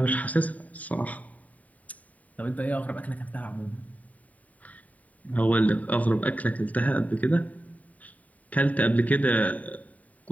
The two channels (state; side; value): late; right; 0.071 ms